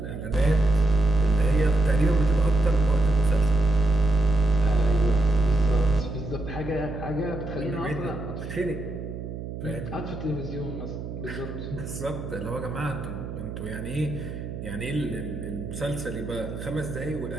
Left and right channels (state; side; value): noise; right; hum, 8 dB below the sound